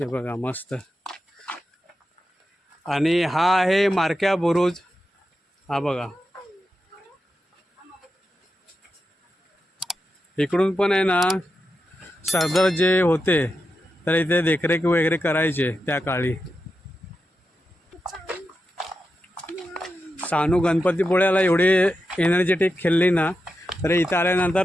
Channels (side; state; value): both; normal; correlation 0.89